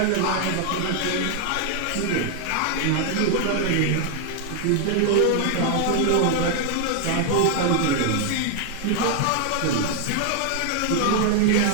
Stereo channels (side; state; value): both; different; correlation 0.00